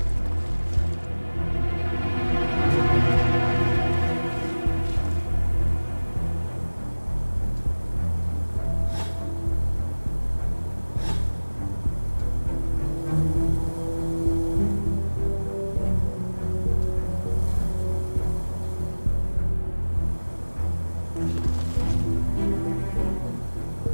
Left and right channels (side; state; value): both; inverted; correlation -1.00